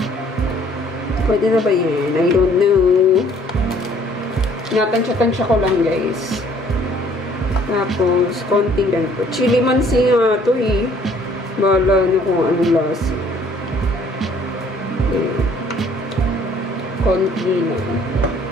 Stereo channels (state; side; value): normal; both; correlation 0.59